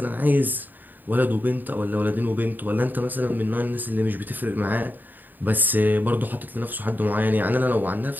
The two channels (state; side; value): late; left; 0.089 ms